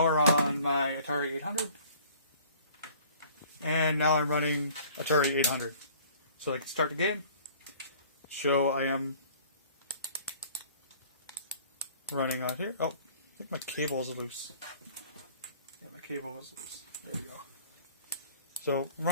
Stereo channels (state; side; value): inverted; both; correlation -0.52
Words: on my Atari 800. And now I'm running Atari 800. So I can start the game. So I am running on here. Oh, I think my cable is loose. Yeah, my cable is loose. There we go. So I'm